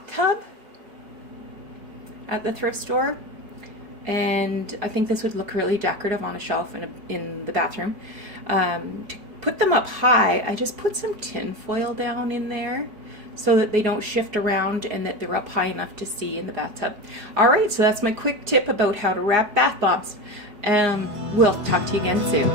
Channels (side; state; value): left; late; 4.7 ms